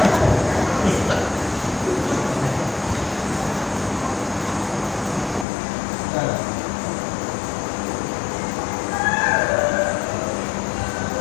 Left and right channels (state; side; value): drops out; right; at 5.5 s